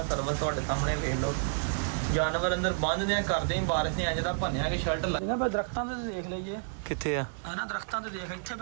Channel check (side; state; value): left; silent; digital silence